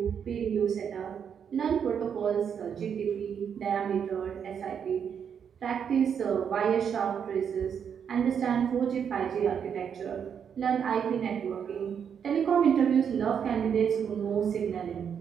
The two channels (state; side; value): quieter; left; 7.6 dB